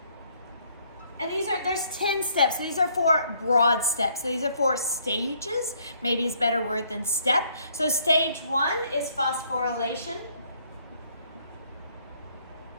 and there's 10 steps. So these are 4 broad steps. So these are 4 stages, maybe is a better word than step. So stage 1 is phosphorylation.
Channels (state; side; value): inverted; both; correlation -0.66